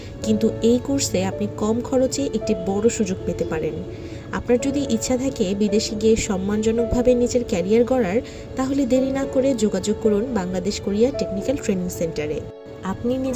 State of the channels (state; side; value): identical; both; correlation 1.00